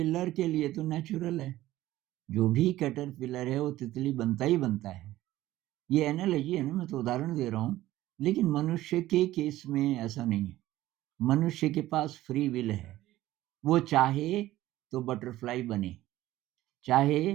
के लिए तो नेचुरल है, जो भी कैटरपिलर है वो तितली बनता ही बनता है। ये एनालॉजी है ना, मैं तो उदाहरण दे रहा हूँ, लेकिन मनुष्य के केस में ऐसा नहीं है। मनुष्य के पास फ्री विल है। वो चाहे तो बटरफ्लाई बने, चाहे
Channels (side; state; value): left; quieter; 15.5 dB